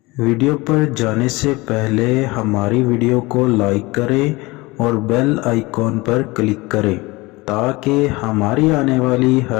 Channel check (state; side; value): quieter; right; 22.9 dB